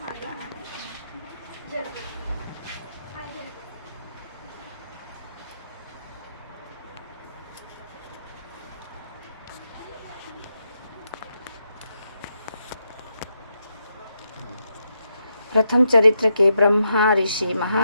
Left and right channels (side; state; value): both; inverted; correlation -0.83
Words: माता रानी। प्रथम चरित्र के ब्रह्मा, ऋषि,